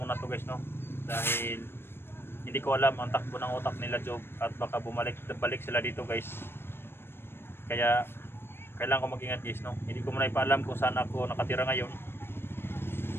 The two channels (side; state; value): right; late; 0.11 ms